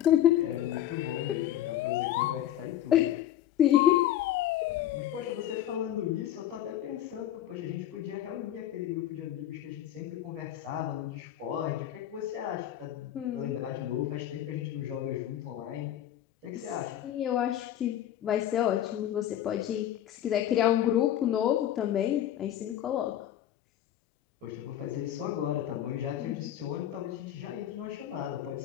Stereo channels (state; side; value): quieter; right; 11.7 dB